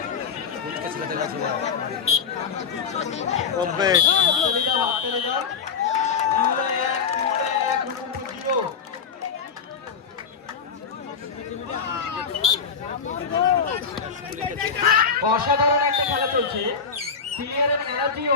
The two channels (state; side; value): quieter; right; 5.9 dB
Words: অসাধারণ একটা খেলা চলছে, প্লেয়ারের এনার্জি